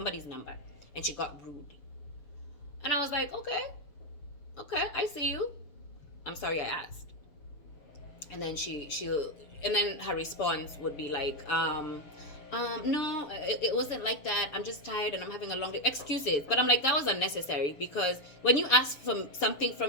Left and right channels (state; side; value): late; right; 6.8 ms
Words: number, and she got rude. And I was like, okay, I see you. I'm sorry I asked. And then and then her response would be like, no, it wasn't like that. I'm just tired and I'm having a long day. Excuses. But I'm like, that was unnecessary, because when you ask for something